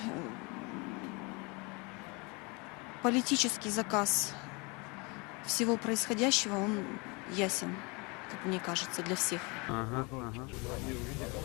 политический заказ всего происходящего, он ясен, как мне кажется, для всех. Ага.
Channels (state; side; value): quieter; right; 28.9 dB